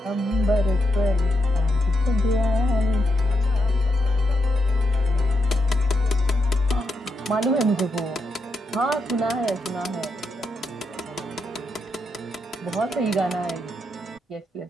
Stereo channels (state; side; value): normal; both; correlation 0.82